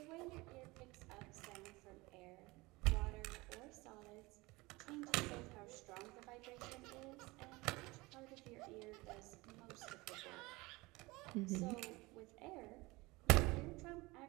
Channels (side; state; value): left; quieter; 22.6 dB